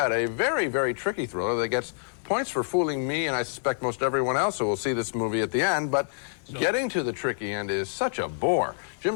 a very, very tricky thriller that gets points for fooling me and I suspect most everyone else who will see this movie at the end, but getting to the tricky end is such a bore. Jim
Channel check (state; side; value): silent; right; 60 dB below the other